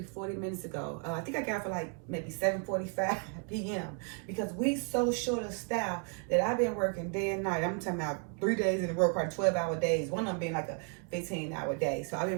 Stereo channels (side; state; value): left; quieter; 38.7 dB